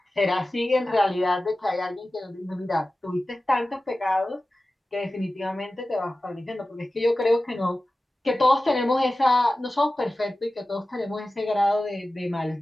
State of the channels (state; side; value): normal; both; correlation 0.95